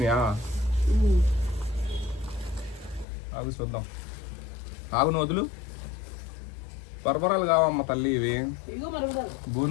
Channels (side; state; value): right; drops out; at 3.1 s